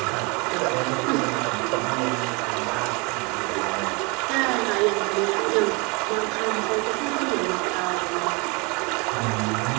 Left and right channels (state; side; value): quieter; left; 29.4 dB